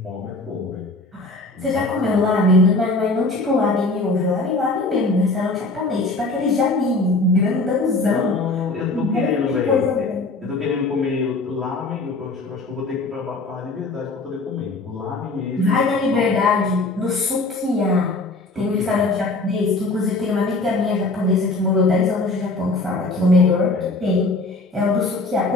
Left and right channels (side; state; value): right; quieter; 3.2 dB